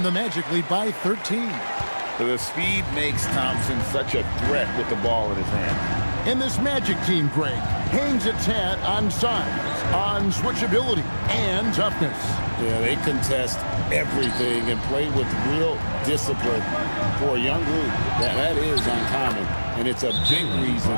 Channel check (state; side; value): inverted; both; correlation -1.00